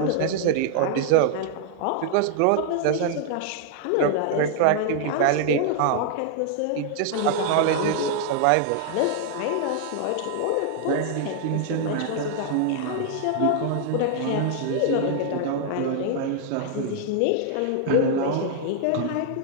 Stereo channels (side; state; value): both; different; correlation 0.00